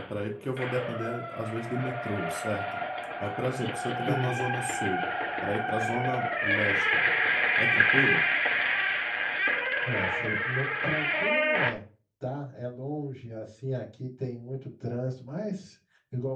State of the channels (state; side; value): identical; both; correlation 1.00